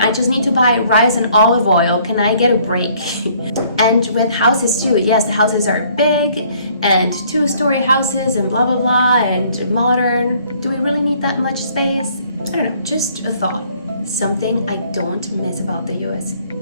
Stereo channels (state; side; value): inverted; both; correlation -0.61